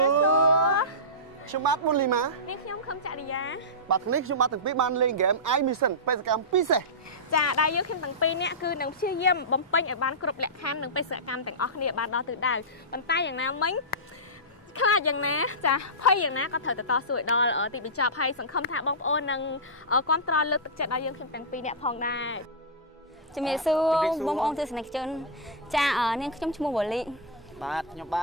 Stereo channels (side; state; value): both; normal; correlation -0.13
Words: ខ្ញុំបាទមុនលីម៉ានេះខ្ញុំខំចរិយាបាទថ្ងៃនេះខ្ញុំបាទទាំងពីរបានលេងហ្គេម I Mission បេសកកម្មពិសេសចាដែលយើងខ្ញុំទាំងពីរនាក់គឺនឹងព្យាយាមបំពេញឲ្យបានគ្រប់លក្ខខណ្ឌនិងបេសកកម្មទាំងអស់គ្នាបានដល់ទិសដៅប៉ុន្តែយ៉ាងណាមិញខ្លាចយ៉ាងណាចាភ័យយ៉ាងណាក៏ត្រូវទៅតស៊ូឲ្យដល់ទីបញ្ចប់ហើយសង្ឃឹមថាបងប្អូននឹងគ្រប់គ្រងលើកទឹកចិត្តដល់យើងខ្ញុំទាំងពីរនាក់ផងដែរជំរាបសួរបងប្អូនទស្សនិកជនចានាងខ្ញុំឈ្មោះវ៉ូលីបាទខ្ញុំប